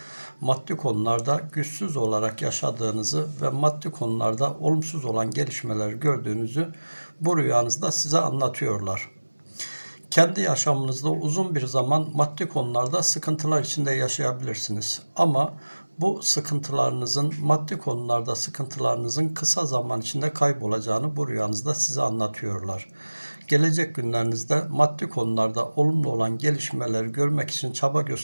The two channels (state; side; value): inverted; both; correlation -1.00